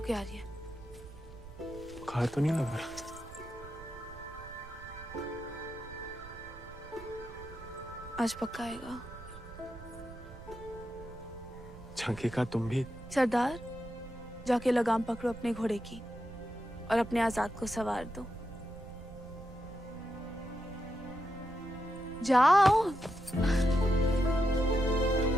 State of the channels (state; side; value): noise; right; rumble, 17 dB below the sound